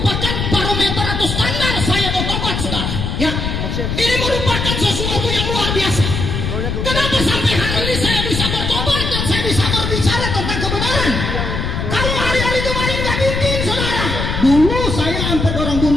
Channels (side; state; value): left; noise; rumble, 2 dB below the sound